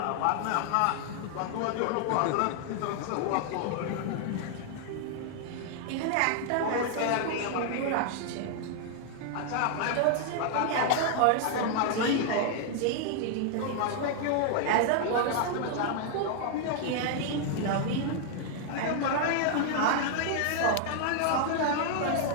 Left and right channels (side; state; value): both; different; correlation 0.00